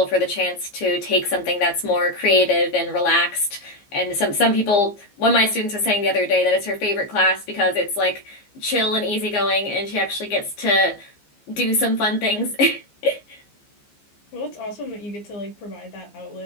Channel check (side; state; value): right; late; 15 ms